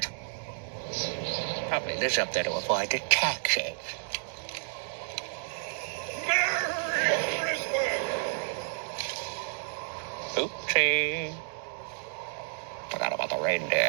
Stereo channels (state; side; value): silent; left; digital silence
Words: Probably lives up there to avoid the taxes. Merry Christmas! Oopsie. Forgot about the